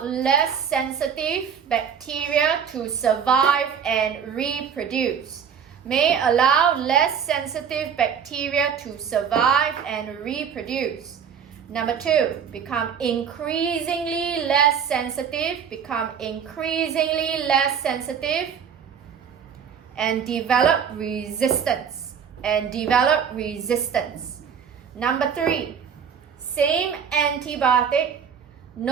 less sensitive bacteria to survive and reproduce. May allow less sensitive bacteria to survive and reproduce. Number 2, become increasingly less sensitive, and develop resistance. Number 3, same antibiotic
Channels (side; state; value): left; quieter; 7.4 dB